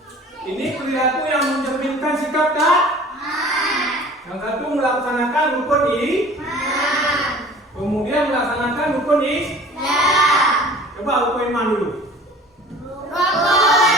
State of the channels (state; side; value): normal; both; correlation 0.45